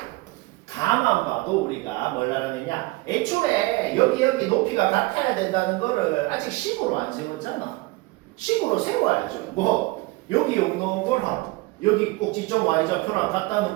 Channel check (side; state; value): left; quieter; 22.2 dB